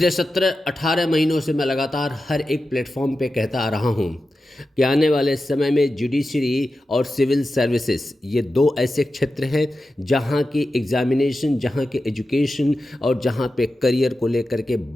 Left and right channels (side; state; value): both; normal; correlation 0.92